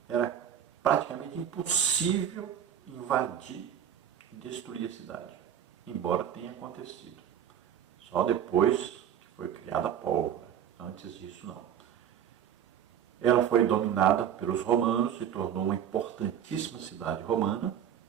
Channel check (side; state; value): left; quieter; 9.4 dB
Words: era praticamente impossível invadir e destruir a cidade, embora tenha acontecido. Só depois que foi criada a pólvora, antes disso não. Ela foi dominada pelos romanos, se tornou uma importantíssima cidade romana,